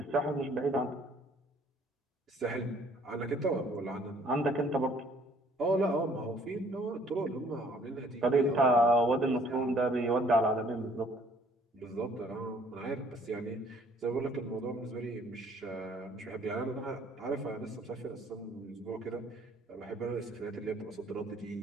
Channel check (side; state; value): both; normal; correlation 0.59